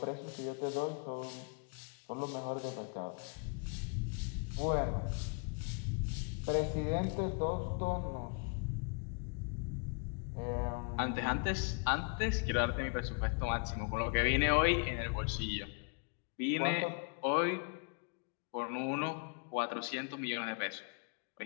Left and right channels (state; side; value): quieter; right; 37.3 dB